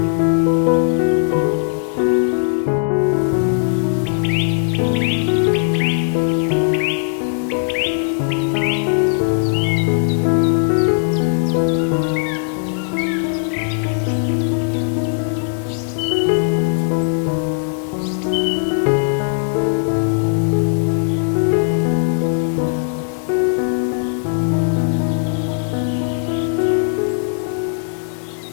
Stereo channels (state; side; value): silent; right; digital silence